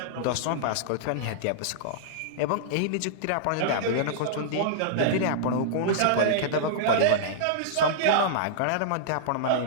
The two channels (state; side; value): different; both; correlation -0.02